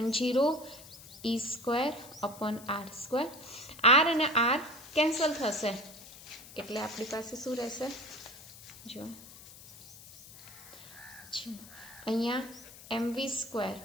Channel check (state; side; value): noise; left; hiss, 18 dB below the sound